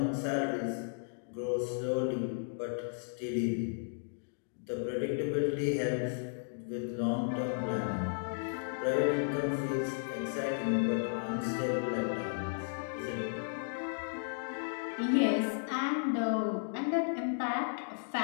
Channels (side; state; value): right; silent; digital silence